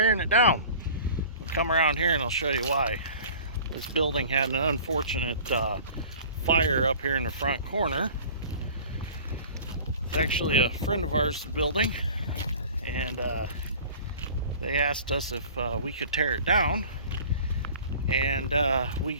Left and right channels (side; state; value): both; inverted; correlation -0.44